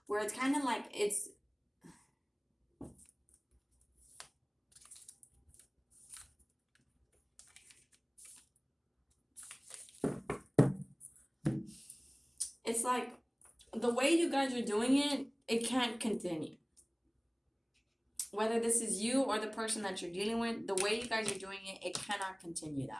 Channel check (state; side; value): identical; both; correlation 1.00